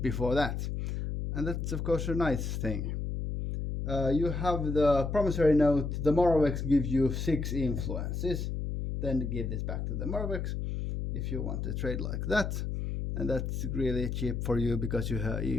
before that, and that's of course a nice thing. You have the promissory note. The Morovec gives you 6 influences. Then give this back to the Morovec if you want to trade like that, and that's really cheap for you because you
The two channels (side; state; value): left; noise; hum, 3 dB below the sound